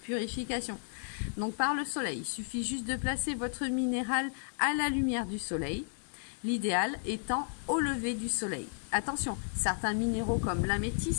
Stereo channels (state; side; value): silent; right; digital silence